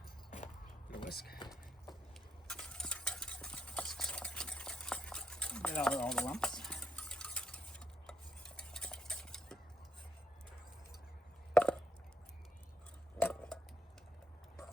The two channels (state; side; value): normal; both; correlation 0.78